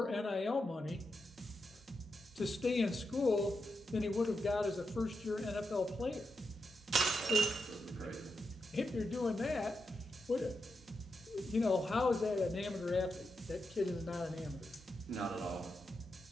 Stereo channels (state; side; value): normal; both; correlation 0.86